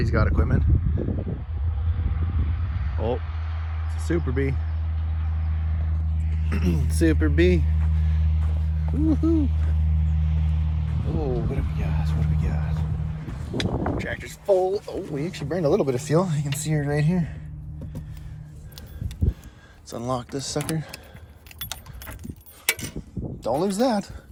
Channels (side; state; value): both; identical; correlation 1.00